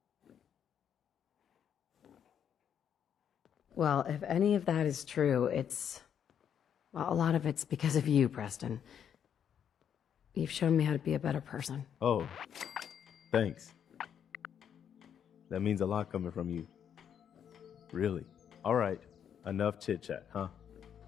Well, if any of that is true, well, a lot of it's because of you, Preston. You've shown me how to be a better person. Oh, thanks. That means a lot coming from you. Really. All right, enough chit-chat, huh?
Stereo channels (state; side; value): quieter; right; 8.6 dB